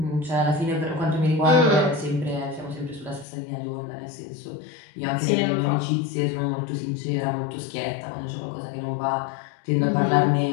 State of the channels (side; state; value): right; drops out; at 3.2 s